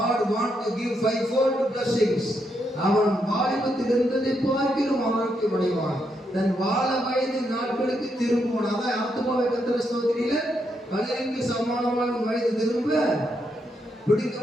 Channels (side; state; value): both; normal; correlation 0.80